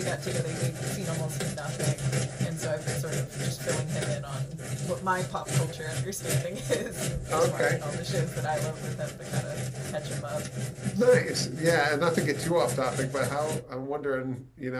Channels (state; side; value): identical; both; correlation 1.00